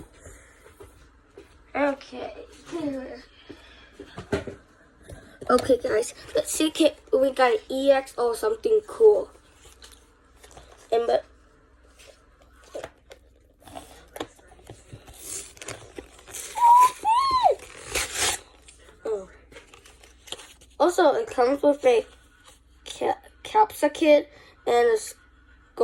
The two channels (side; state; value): both; identical; correlation 1.00